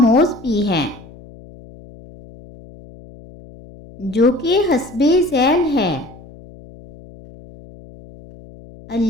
بھی ہے، جو کہ حسب ذیل ہے۔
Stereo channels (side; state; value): left; noise; hum, 21 dB below the sound